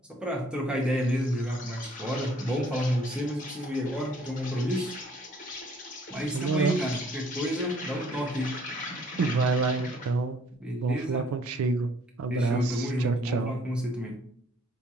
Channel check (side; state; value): both; normal; correlation 0.61